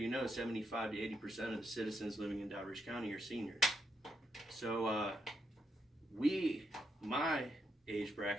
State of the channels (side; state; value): both; normal; correlation 0.80